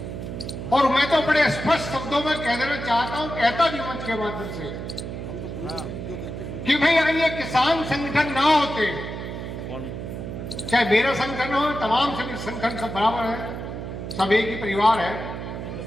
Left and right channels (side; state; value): right; noise; hum, 7 dB below the sound